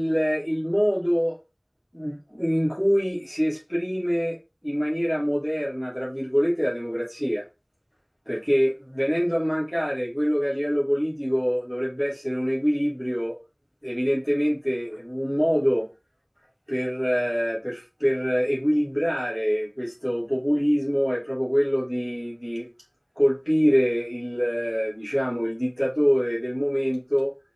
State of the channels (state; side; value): identical; both; correlation 1.00